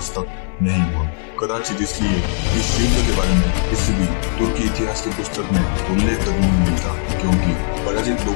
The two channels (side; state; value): right; silent; digital silence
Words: तक नहीं हुआ। कदाचित इसलिए इस युद्ध के बारे में किसी भी तुर्की इतिहास की पुस्तक में उल्लेख तक नहीं मिलता, क्योंकि पराजित